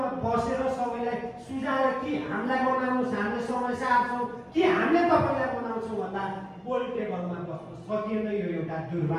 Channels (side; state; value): both; identical; correlation 1.00